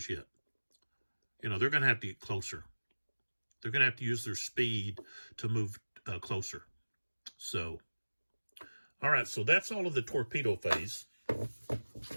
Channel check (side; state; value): both; inverted; correlation -1.00